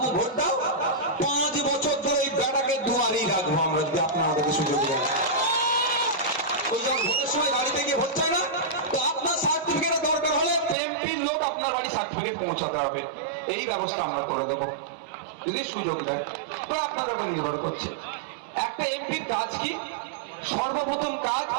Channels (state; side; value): drops out; left; at 10.8 s